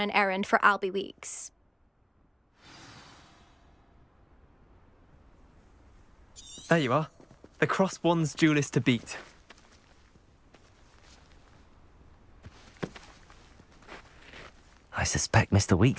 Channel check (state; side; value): identical; both; correlation 1.00